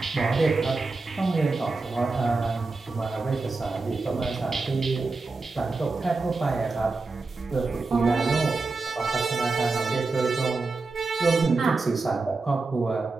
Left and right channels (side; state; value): left; quieter; 3.8 dB